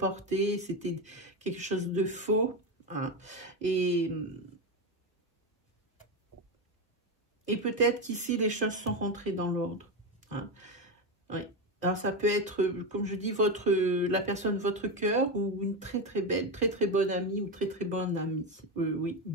c'était quelque chose de faux. Hein. Et peut-être qu'ici, les choses sont rentrées dans l'ordre. Hein. Oui. Alors, ça peut être, comme je dis, la personne de votre cœur ou une très belle, très bonne amie ou très bonne amie. Oui,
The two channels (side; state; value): both; normal; correlation 0.13